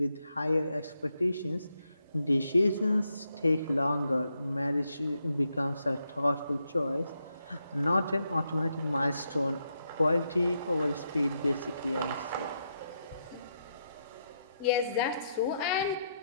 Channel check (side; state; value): both; inverted; correlation -0.81